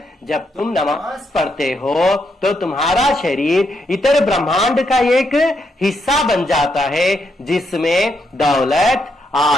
जब तुम नमाज पढ़ते हो तो तुम्हारा शरीर इतर ब्रह्मांड का एक हिस्सा बन जाता है, जिसमें दौलत,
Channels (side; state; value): both; normal; correlation 0.79